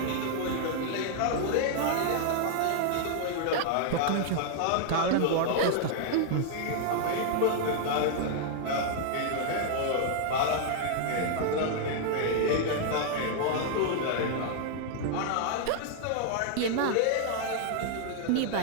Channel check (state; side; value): different; both; correlation 0.00